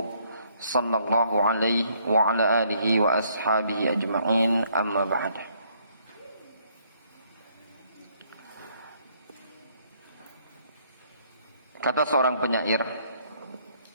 صلى الله عليه وعلى آله وأصحابه أجمعين. أما بعد. Kata seorang penyair,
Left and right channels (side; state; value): both; inverted; correlation -0.67